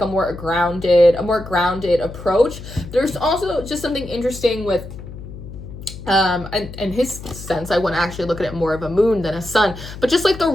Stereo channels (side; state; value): left; noise; hum, 13 dB below the sound